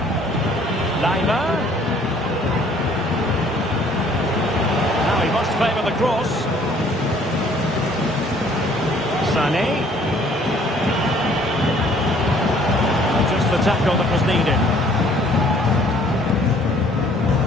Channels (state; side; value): normal; both; correlation 0.58